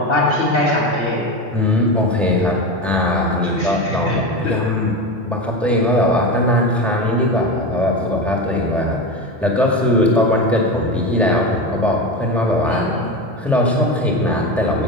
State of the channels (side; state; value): both; normal; correlation 0.21